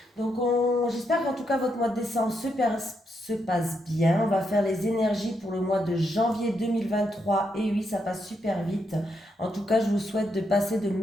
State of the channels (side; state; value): both; normal; correlation 0.80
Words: Donc j'espère qu'en tout cas votre mois de décembre se passe bien. On va faire les énergies pour le mois de janvier 2023 et oui, ça passe super vite. En tout cas, je vous souhaite de passer de